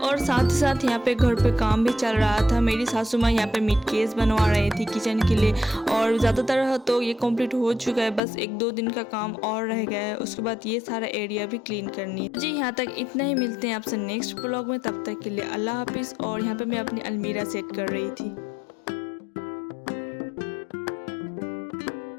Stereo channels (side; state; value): right; drops out; at 8.2 s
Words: और साथ ही साथ यहाँ पे घर पे काम भी चल रहा था। मेरी सासू माँ यहाँ पे मीट केस बनवा रही थी किचन के लिए, और ज़्यादातर तो ये कंप्लीट हो चुका है, बस 1-2 दिन का काम और रह गया है। उसके बाद ये सारा एरिया भी क्लीन करनी है। जी यहाँ तक इतना ही, मिलते हैं आपसे नेक्स्ट ब्लॉग में। तब तक के लिए अल्लाह हाफिज़। और यहाँ पे मैं अपनी अलमीरा सेट कर रही थी।